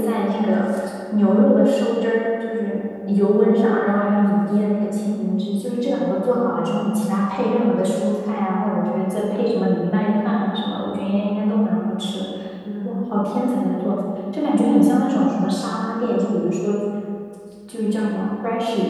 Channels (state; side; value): identical; both; correlation 1.00